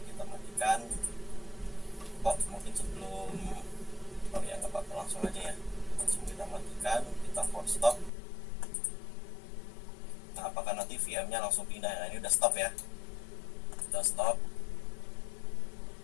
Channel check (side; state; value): right; drops out; at 8.1 s